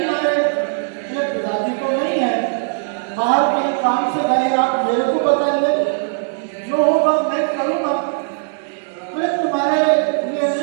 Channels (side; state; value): left; silent; digital silence